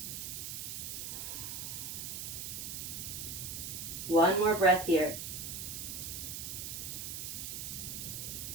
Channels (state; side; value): noise; right; hiss, 5 dB below the sound